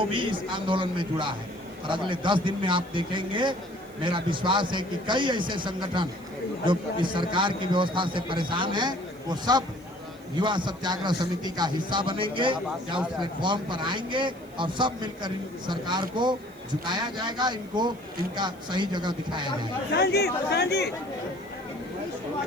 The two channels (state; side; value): noise; right; hiss, 27 dB below the sound